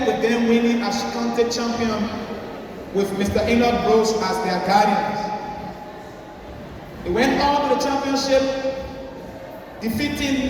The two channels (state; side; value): identical; both; correlation 1.00